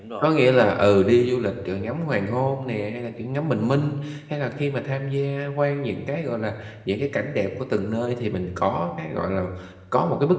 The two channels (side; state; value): both; identical; correlation 1.00